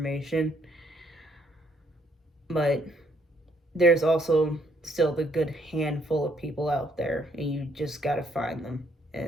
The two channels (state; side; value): normal; both; correlation 0.69